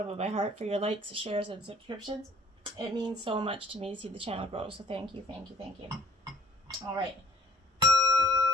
of my heart for your likes, shares, and subscriptions. It means so much to me to see the channel grow, so thank you, thank you, thank you. All right.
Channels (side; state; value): both; normal; correlation 0.58